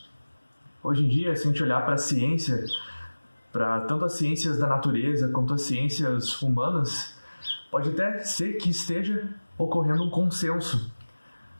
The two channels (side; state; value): both; inverted; correlation -1.00